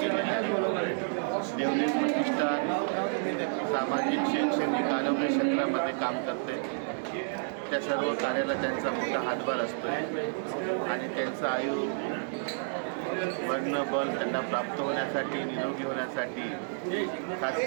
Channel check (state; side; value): silent; left; 58 dB below the other